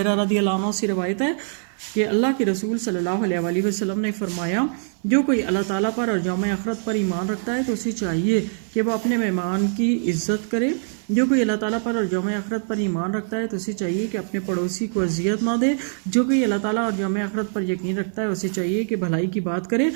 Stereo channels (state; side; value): silent; left; 56 dB below the other